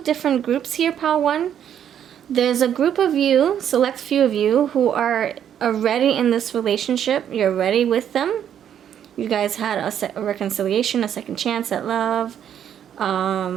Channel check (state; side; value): quieter; left; 9.5 dB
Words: different groups here, pile 1. There's a group of you, select few of you, who are already in this relationship. You're ready with them. You guys had a reconciliation, a second chance at love,